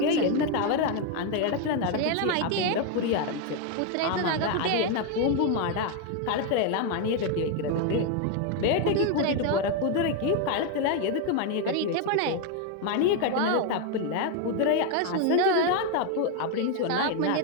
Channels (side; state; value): both; different; correlation 0.01